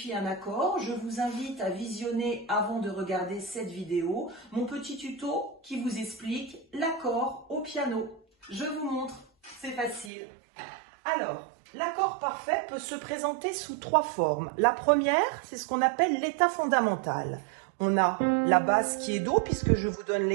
un accord, je vous invite à visionner avant de regarder cette vidéo mon petit tuto qui vous explique l'accord au piano. Je vous montre, c'est facile. Alors, l'accord parfait peut se présenter sous trois formes. La première, c'est ce qu'on appelle l'état fondamental. On a la basse qui est Do, puisque je vous donne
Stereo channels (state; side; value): drops out; left; at 10.1 s